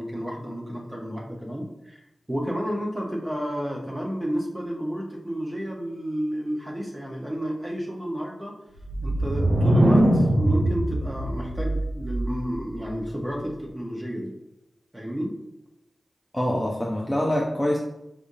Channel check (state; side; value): normal; both; correlation 0.94